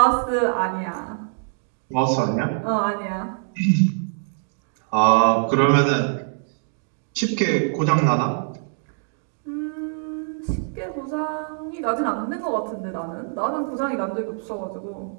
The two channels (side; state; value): left; silent; 62 dB below the other